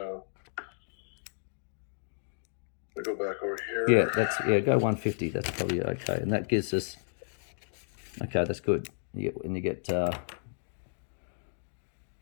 go back over here. Yeah, go 150. That's probably okay, and that gives us. Okay, that's good. You get.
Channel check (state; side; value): silent; right; digital silence